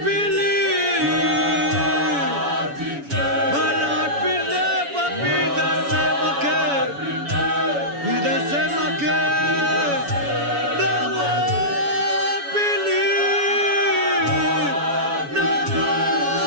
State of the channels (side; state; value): left; late; 7.1 ms